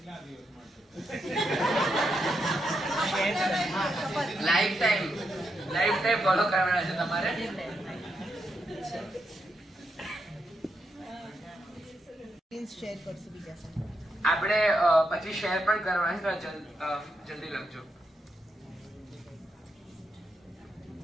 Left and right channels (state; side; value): normal; both; correlation 0.82